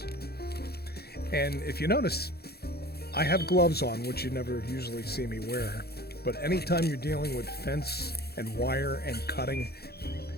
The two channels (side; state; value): right; late; 0.46 ms